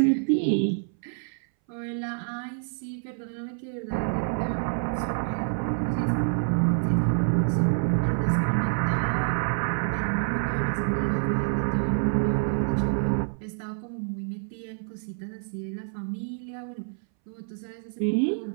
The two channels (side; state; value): left; silent; 60 dB below the other